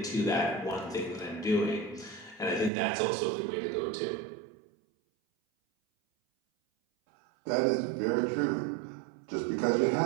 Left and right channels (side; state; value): left; drops out; at 2.7 s